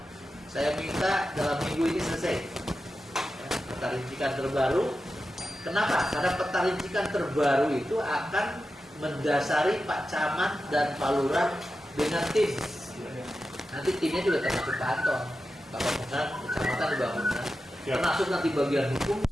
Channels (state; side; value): normal; both; correlation 0.91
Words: saya minta dalam minggu ini selesai. Ya. Peta rincikan terbaru. Kenapa? Karena peta rincikan terbaru itu akan mendasari Pak Camat dan Pak Lurah dengan tim. Nanti timnya juga termasuk Pak Anton, Bapak Pembangunan, Kecamatan dibangunkan. Termasuk nanti bagian hukum,